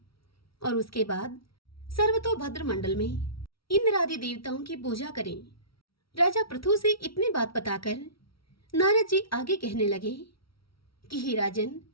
और उसके बाद सर्वतोभद्र मंडल में इंद्र आदि देवताओं की पूजा करें। राजा पृथु से इतनी बात बताकर नारद जी आगे कहने लगे कि हे राजन,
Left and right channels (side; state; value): right; late; 0.75 ms